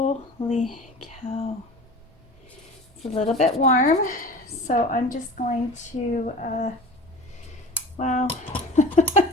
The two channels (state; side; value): normal; both; correlation 0.38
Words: cow! It's a little bit warm, so I'm just going to. Wow,